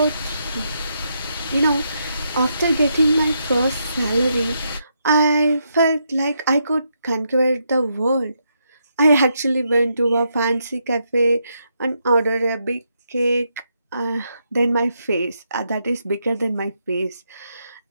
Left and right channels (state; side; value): inverted; both; correlation -0.80